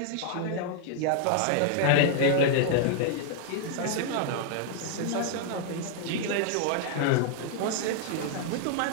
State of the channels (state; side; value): different; both; correlation 0.00